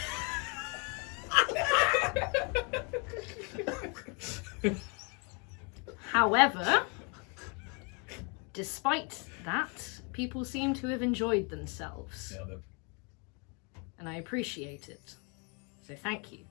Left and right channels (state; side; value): quieter; right; 34.4 dB